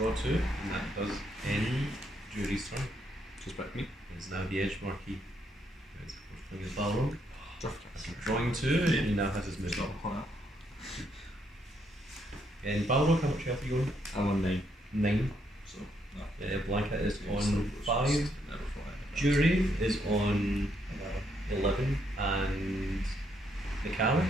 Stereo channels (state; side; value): normal; both; correlation 0.75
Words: 2, and that does end Juri's turn. Just back me. It's now the edge marquee. It's of course playing his Balrog. Draft. After drawing 2, he now has his It's not movement. hot. And Balrog, how much health are you on? I'm on 9. 9. So, no. Blanka is Yeah, on so 5. Never fly. Juri is on 11. And Necalli?